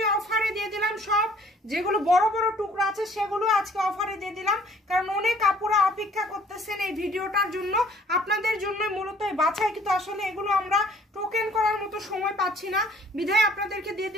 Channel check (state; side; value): normal; both; correlation 0.56